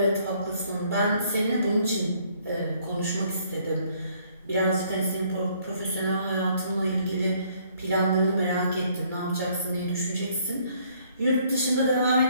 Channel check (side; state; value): both; inverted; correlation -0.64